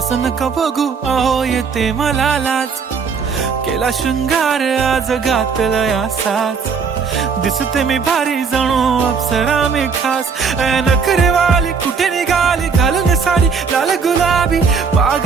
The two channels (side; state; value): left; quieter; 5.6 dB